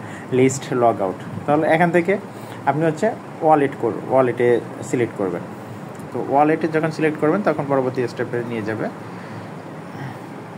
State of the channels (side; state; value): both; identical; correlation 1.00